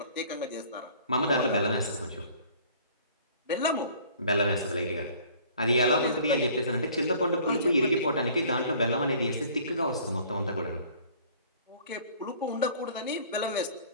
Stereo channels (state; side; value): inverted; both; correlation -0.52